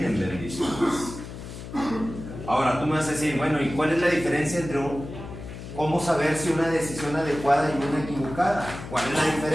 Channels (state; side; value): noise; left; hum, 11 dB below the sound